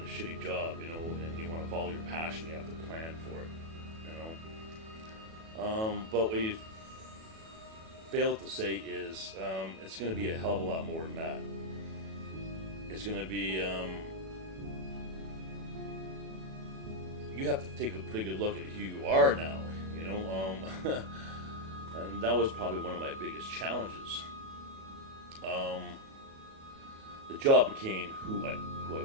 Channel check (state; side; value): late; left; 37 ms